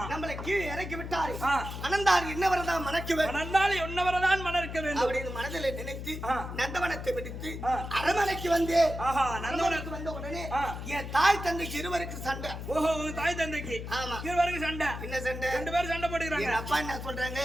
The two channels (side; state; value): left; noise; hum, 8 dB below the sound